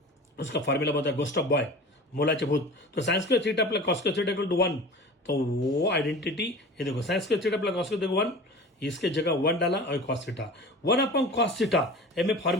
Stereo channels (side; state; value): both; normal; correlation 0.38